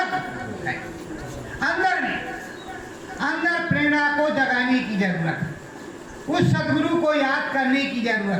है। अंदर प्रेरणा को जगाने की जरूरत है, उस सदगुरु को याद करने की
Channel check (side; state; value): both; identical; correlation 1.00